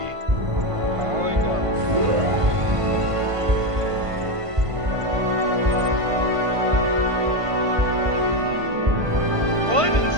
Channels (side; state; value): left; late; 1.5 ms